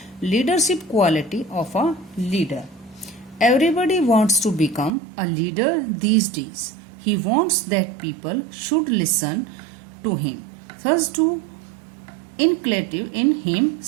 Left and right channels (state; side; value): drops out; left; at 4.9 s